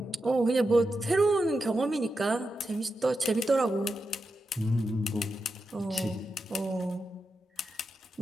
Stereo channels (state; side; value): normal; both; correlation 0.88